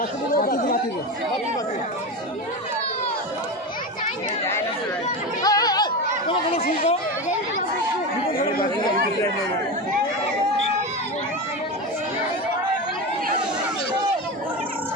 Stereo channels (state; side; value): normal; both; correlation 0.21